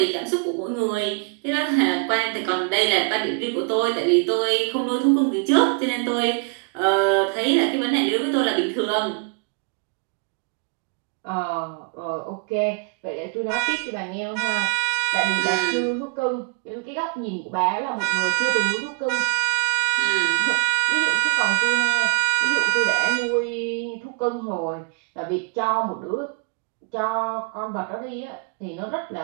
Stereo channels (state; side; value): quieter; left; 33.3 dB